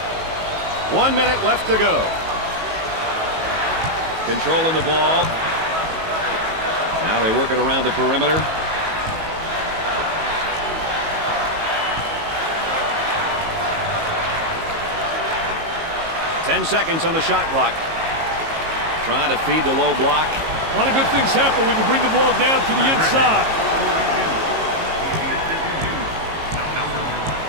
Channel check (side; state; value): left; late; 19 ms